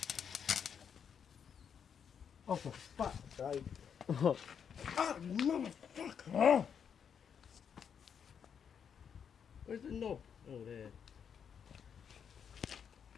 Oh, for fuck's sake. Oh, Oh, you motherfucker. Where's the knob? Oh, there.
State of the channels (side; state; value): right; quieter; 7.5 dB